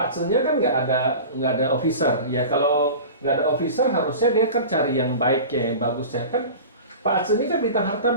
Zi-nya kan nggak ada officer. Ya kalau nggak ada officer harusnya dia kan cari yang baiknya, yang bagusnya kan. Pak Zi ini kan bintang harta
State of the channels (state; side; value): inverted; both; correlation -0.35